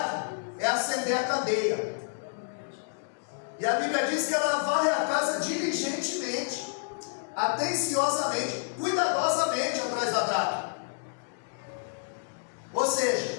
é acender a candeia. E a Bíblia diz que ela varre a casa diligentemente, atenciosamente, cuidadosamente atrás da dracma. Ou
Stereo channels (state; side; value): silent; right; digital silence